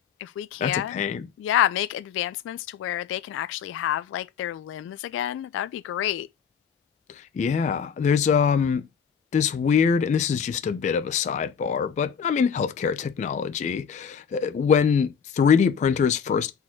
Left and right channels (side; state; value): right; quieter; 6.9 dB